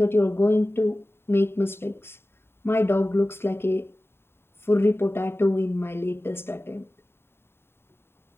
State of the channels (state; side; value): late; right; 0.11 ms